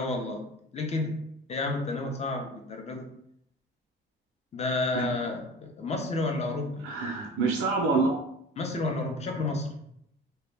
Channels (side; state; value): both; normal; correlation 0.36